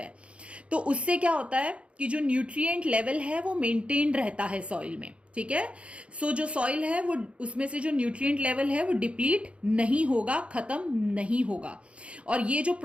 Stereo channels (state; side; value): late; left; 0.060 ms